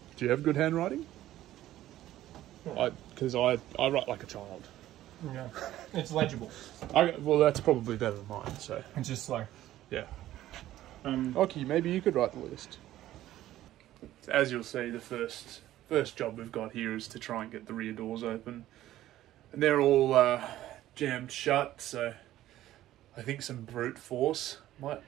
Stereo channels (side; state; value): left; quieter; 14.0 dB